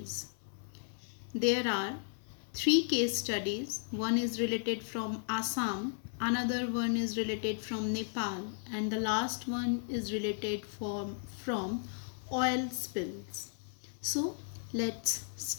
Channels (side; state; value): right; silent; 54 dB below the other